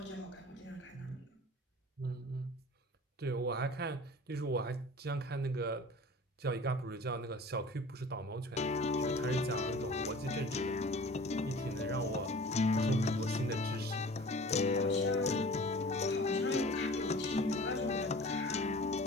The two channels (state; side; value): normal; both; correlation 0.43